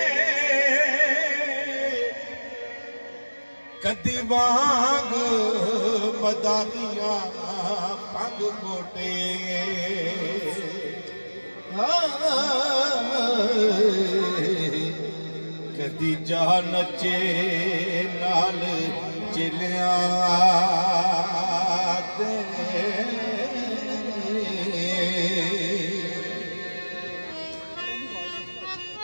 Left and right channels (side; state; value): both; inverted; correlation -1.00